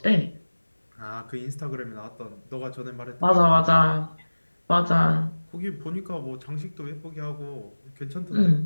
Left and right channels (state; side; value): inverted; both; correlation -1.00